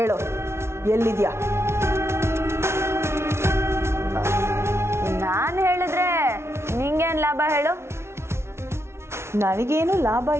ಎಲ್ಲಿದ್ಯಾ? ನಾನು ಹೇಳಿದ್ರೆ ನಿಂಗೇನ್ ಲಾಭ ಹೇಳು? ನನಗೇನು ಲಾಭ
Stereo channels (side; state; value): left; late; 0.13 ms